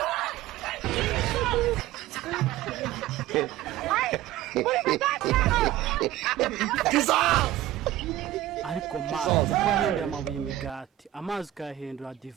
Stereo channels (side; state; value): left; quieter; 14.1 dB